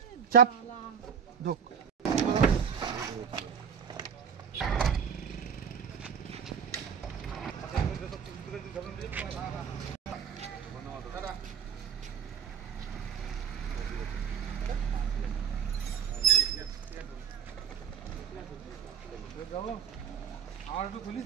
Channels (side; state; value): left; quieter; 7.3 dB